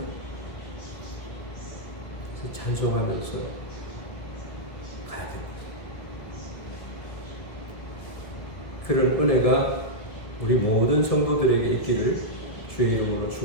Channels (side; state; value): right; late; 1.9 ms